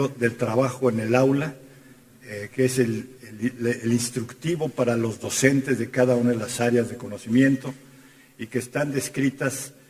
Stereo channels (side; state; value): both; identical; correlation 1.00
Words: del trabajo en el aula, que es el instructivo para los docentes de cada una de las áreas de conocimiento, y que están descritas